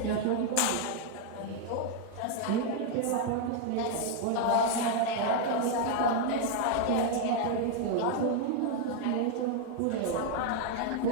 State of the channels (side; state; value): both; different; correlation 0.00